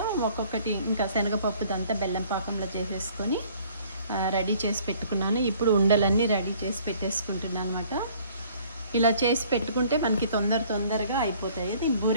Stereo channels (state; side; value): inverted; both; correlation -0.56